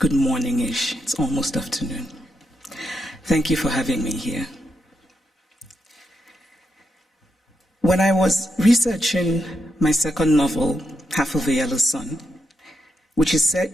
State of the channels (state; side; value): normal; both; correlation 0.83